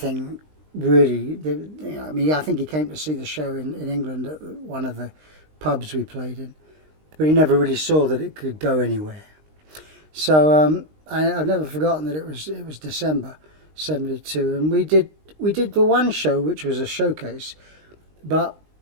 really. I think he came to see the show in England at one of the pubs we played in. but he never really saw that it could go anywhere. So I've never forgotten that it was December '72, and we did the one show, which was a showcase, but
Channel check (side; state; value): left; late; 19 ms